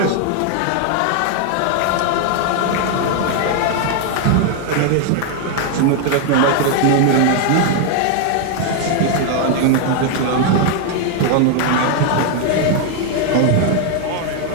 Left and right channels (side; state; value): both; different; correlation 0.00